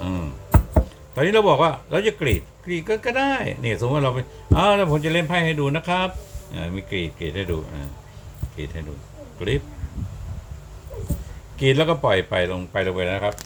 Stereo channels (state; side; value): identical; both; correlation 1.00